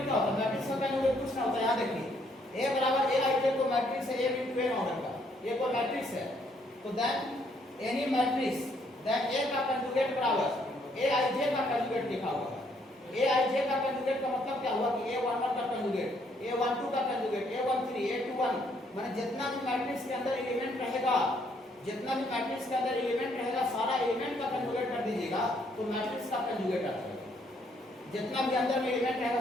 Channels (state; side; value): normal; both; correlation 0.69